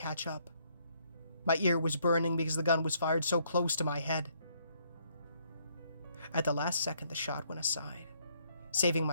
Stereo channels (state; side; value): inverted; both; correlation -0.69